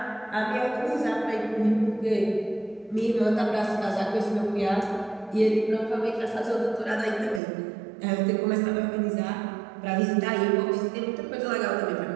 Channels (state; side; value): drops out; left; at 7.4 s